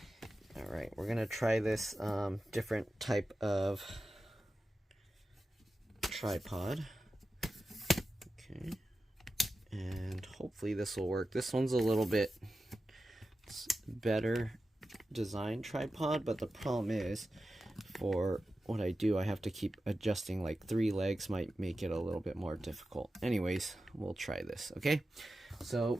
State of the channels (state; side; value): normal; both; correlation 0.93